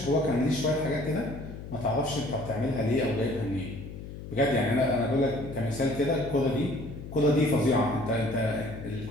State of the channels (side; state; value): left; noise; hum, 11 dB below the sound